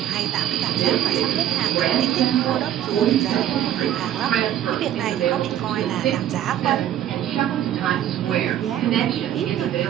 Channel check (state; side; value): quieter; left; 11.3 dB